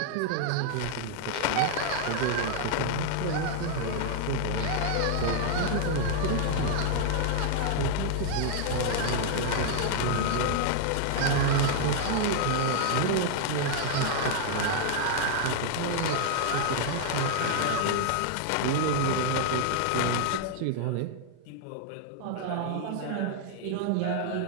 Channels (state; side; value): different; both; correlation 0.00